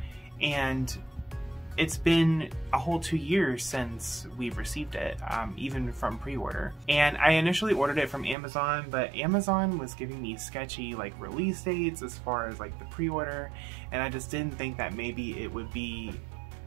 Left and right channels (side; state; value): left; drops out; at 8.3 s